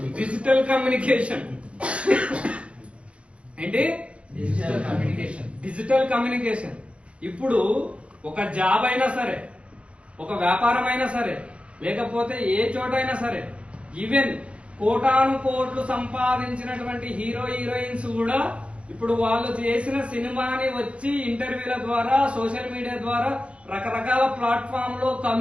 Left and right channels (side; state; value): left; late; 0.060 ms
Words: Digital communication. ఏంటి? Digital communication. ఇప్పుడు ఒక జాబ్ అయినా సరే, ఒక వ్యాపారం అయినా సరే, లేకపోతే ఏ చోట అయినా సరే, ఈవెన్ కోటాను కోట్లు సంపాదించినటువంటి హీరోయిన్స్ కూడా ఇప్పుడు వాళ్ళు చేసిన సినిమాని వచ్చి ఇంటర్వ్యూల ద్వారా, సోషల్ మీడియా ద్వారా, రకరకాల ప్లాట్ఫామ్ లో